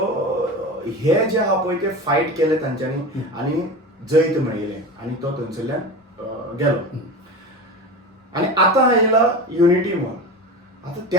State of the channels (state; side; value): normal; both; correlation 0.28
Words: हे जे आहा पळय ते फायट केले तांच्यांनी आनी जैत मेळयलें आनी तो थंयसरल्यान गेलो. आनी आतां येयला युनिटी मॉल. आतां